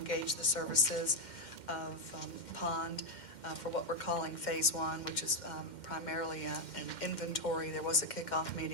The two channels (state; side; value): late; right; 2.1 ms